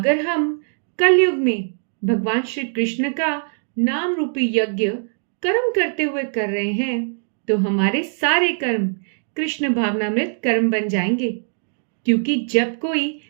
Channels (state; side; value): silent; left; digital silence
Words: हम कलयुग में भगवान श्री कृष्ण का नाम रूपी यज्ञ कर्म करते हुए कर रहे हैं तो हमारे सारे कर्म कृष्ण भावनामृत कर्म बन जाएंगे, क्योंकि जब कोई